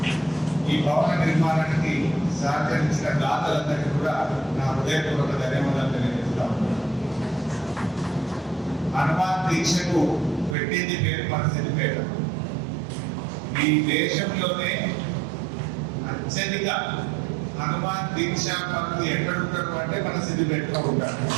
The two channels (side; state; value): left; drops out; at 10.6 s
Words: ఈ భవన నిర్మాణానికి సహకరించిన దాతలందరికీ కూడా నా హృదయపూర్వక ధన్యవాదాలు తెలియజేస్తాను. హనుమాన్ దీక్షకు పెట్టింది పేరు మన సిద్దిపేట. ఈ దేశంలోనే అత్యధిక హనుమాన్ దీక్షా పనులు ఎక్కడుంటారు అంటే మన సిద్దిపేటలో ఉంటారు.